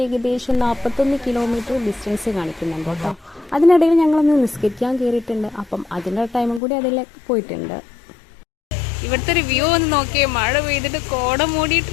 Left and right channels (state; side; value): drops out; right; at 6.6 s